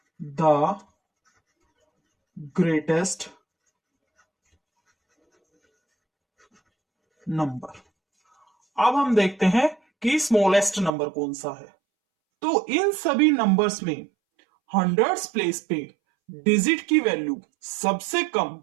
the greatest number. अब हम देखते हैं कि स्मॉलेस्ट नंबर कौन सा है। तो इन सभी नंबर्स में हंड्रेड्स प्लेस पे डिजिट की वैल्यू सबसे कम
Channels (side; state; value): left; drops out; at 10.9 s